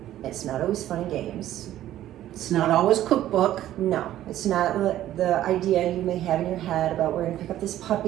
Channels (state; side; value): quieter; left; 13.0 dB